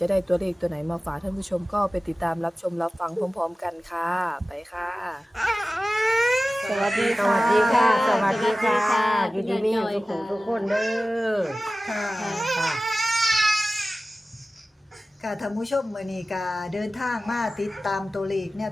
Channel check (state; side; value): normal; both; correlation 0.96